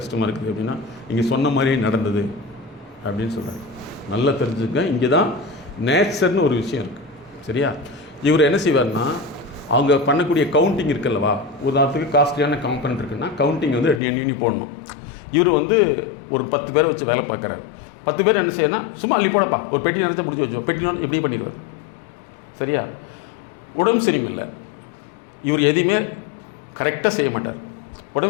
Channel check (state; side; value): drops out; right; at 14.0 s